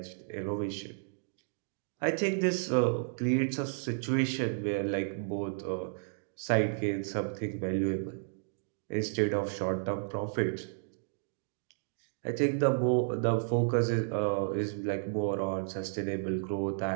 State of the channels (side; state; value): left; silent; digital silence